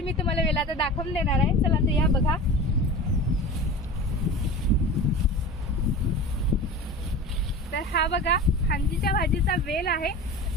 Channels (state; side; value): normal; both; correlation 0.34